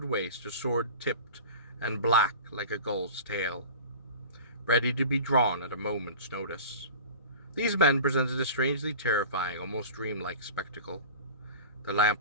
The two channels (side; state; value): both; inverted; correlation -0.37